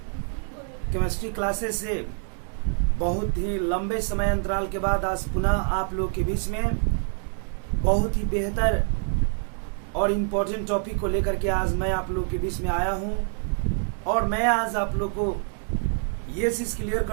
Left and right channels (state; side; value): silent; left; 55 dB below the other